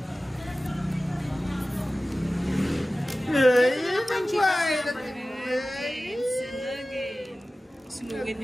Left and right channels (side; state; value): both; normal; correlation 0.96